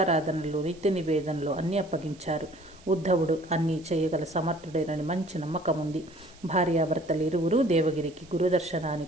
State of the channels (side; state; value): right; noise; hiss, 25 dB below the sound